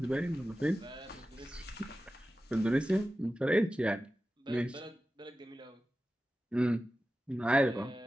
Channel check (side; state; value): both; normal; correlation 0.94